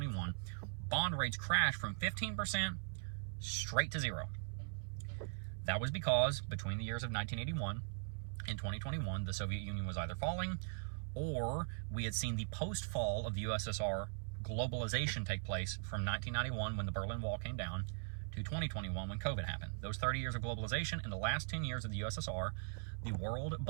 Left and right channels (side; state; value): left; silent; 51 dB below the other